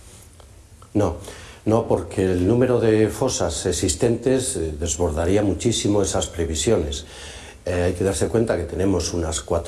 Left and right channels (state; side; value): identical; both; correlation 1.00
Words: No, porque el número de fosas existentes desbordaría muchísimo esas previsiones. Hay que darse cuenta que tenemos unas